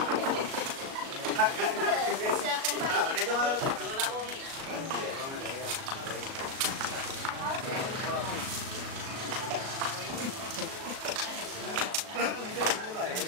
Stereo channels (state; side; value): late; left; 37 ms